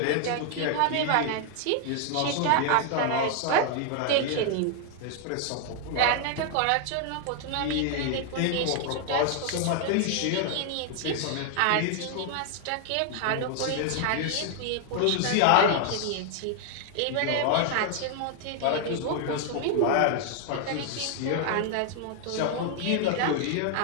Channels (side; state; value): both; different; correlation 0.00